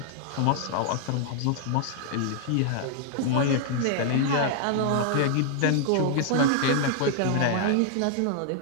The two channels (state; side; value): different; both; correlation 0.00